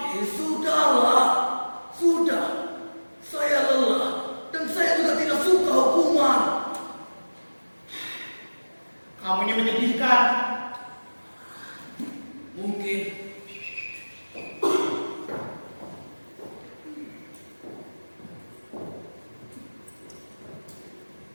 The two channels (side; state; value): both; inverted; correlation -1.00